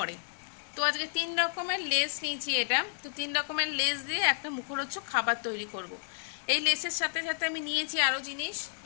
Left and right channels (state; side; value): silent; right; digital silence